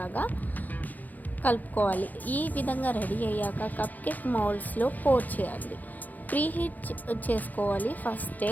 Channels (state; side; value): late; right; 0.082 ms